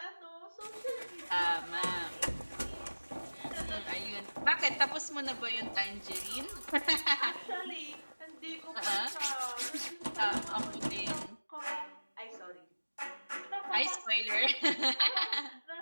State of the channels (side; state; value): both; inverted; correlation -1.00